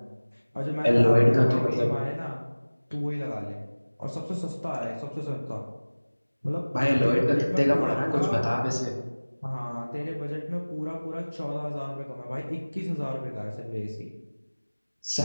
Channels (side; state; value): both; inverted; correlation -1.00